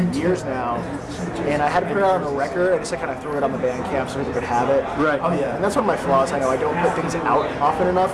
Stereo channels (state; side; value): identical; both; correlation 1.00